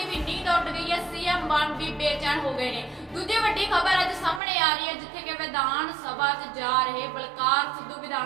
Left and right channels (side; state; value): left; drops out; at 4.4 s